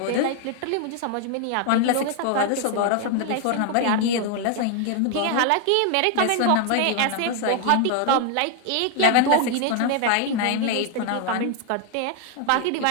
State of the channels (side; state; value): both; different; correlation 0.00